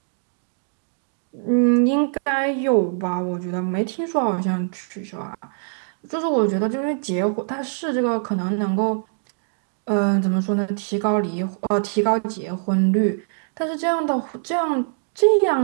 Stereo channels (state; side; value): silent; left; digital silence